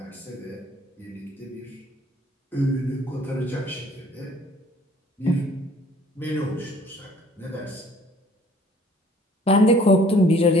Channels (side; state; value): both; normal; correlation 0.55